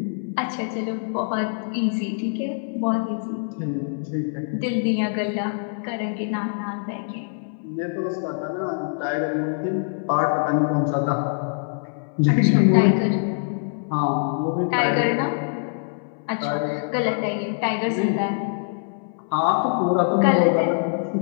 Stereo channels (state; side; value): silent; right; 63 dB below the other